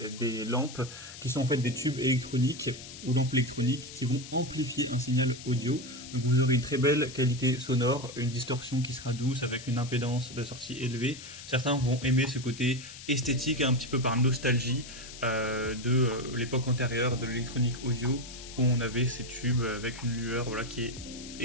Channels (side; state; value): left; noise; hiss, 14 dB below the sound